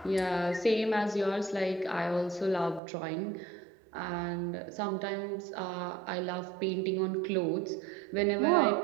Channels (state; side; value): drops out; left; at 2.8 s